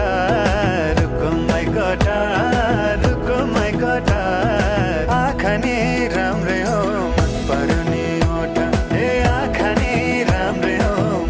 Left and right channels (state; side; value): identical; both; correlation 1.00